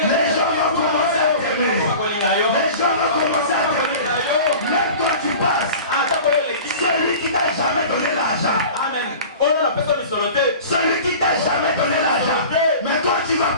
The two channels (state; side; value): inverted; both; correlation -0.39